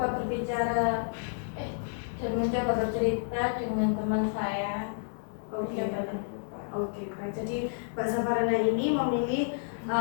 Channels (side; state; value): right; silent; digital silence